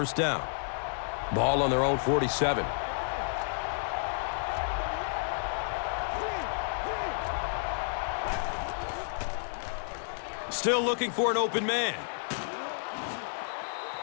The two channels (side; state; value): right; silent; digital silence